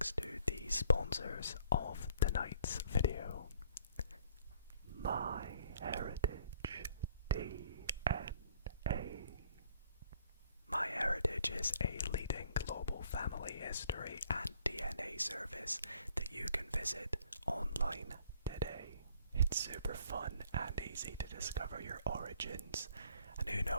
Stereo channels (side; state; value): both; inverted; correlation -0.60